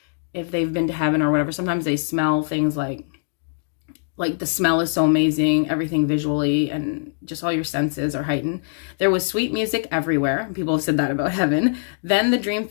if they've been to heaven or whatever, sometimes they smell things like the smell is so amazing, everything visually and just all your senses are heightened. There was sweet music everywhere. People have said that about heaven. Then the dream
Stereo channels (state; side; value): silent; right; digital silence